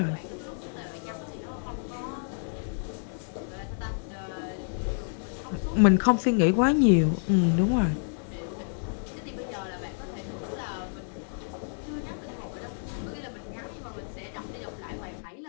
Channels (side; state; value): right; silent; digital silence